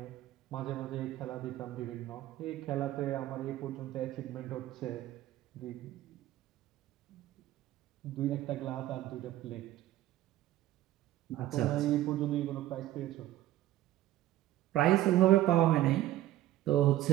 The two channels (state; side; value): quieter; left; 14.4 dB